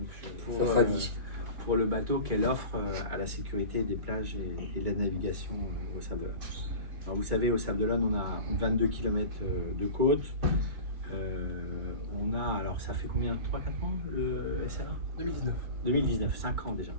Ça sera dit. pour le bateau qu'elle offre à la sécurité des plages et de la navigation au Sables-d'Olonne. Alors vous savez, au Sables-d'Olonne, on a 22 km de côte. On a, alors ça fait combien, 3-4 ans le SRA 2019, 5 ans déjà.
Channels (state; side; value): late; left; 2.5 ms